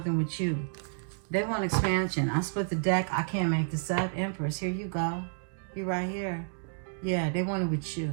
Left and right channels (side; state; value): left; silent; digital silence